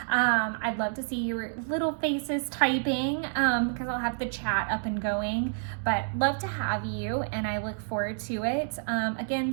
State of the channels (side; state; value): left; silent; 59 dB below the other